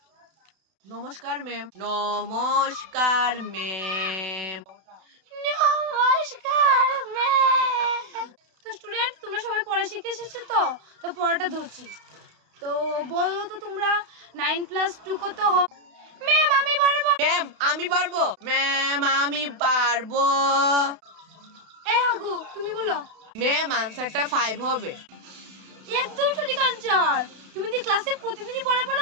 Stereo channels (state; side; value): late; left; 32 ms